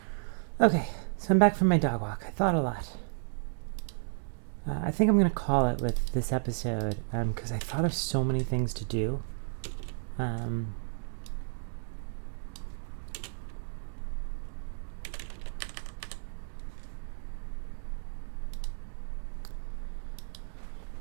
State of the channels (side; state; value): left; silent; digital silence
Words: Okay, so I'm back from my dog walk. I thought a lot. I think I'm gonna call it with this episode because I thought of so many things to do.